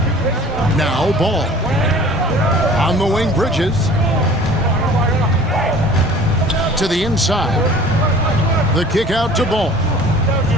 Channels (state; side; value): normal; both; correlation 0.46